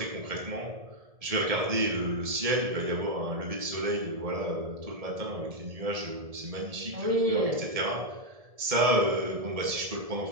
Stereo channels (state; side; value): late; left; 1.7 ms